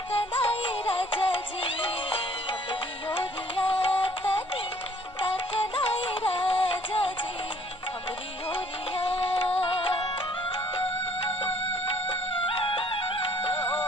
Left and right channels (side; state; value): both; normal; correlation 0.59